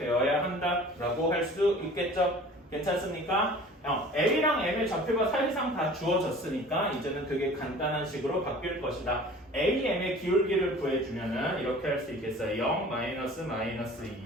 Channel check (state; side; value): normal; both; correlation 0.45